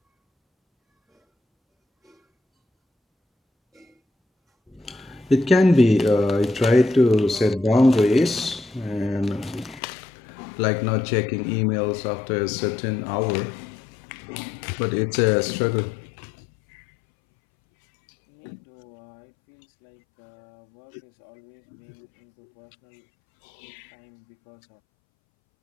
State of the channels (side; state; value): right; drops out; at 9.8 s